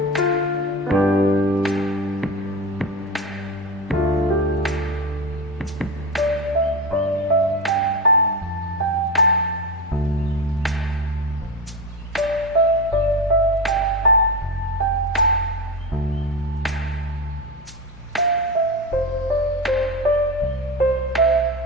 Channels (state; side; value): normal; both; correlation 0.19